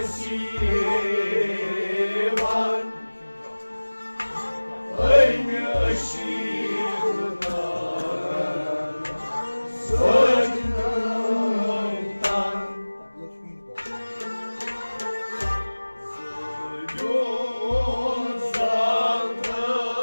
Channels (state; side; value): inverted; both; correlation -1.00